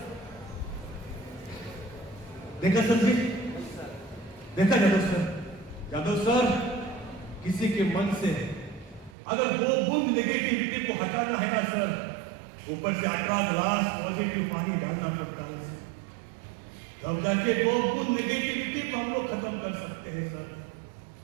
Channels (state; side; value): drops out; left; at 9.2 s